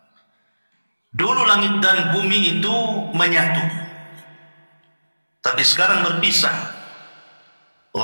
dulu langit dan bumi itu menyatu, tapi sekarang berpisah.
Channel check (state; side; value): inverted; both; correlation -1.00